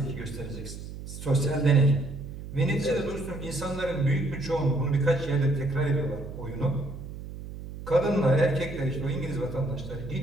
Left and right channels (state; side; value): noise; right; hum, 11 dB below the sound